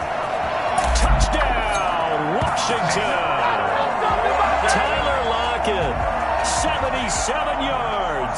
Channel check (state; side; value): identical; both; correlation 1.00